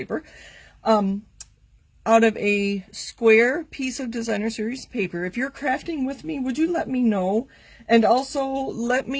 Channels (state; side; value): identical; both; correlation 1.00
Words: out of a square piece of Designer Series paper. If you're crafting with me, would you let me know? And also let